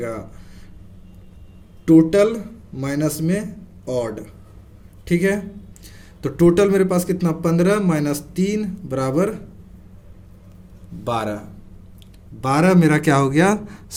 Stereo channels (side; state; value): both; identical; correlation 1.00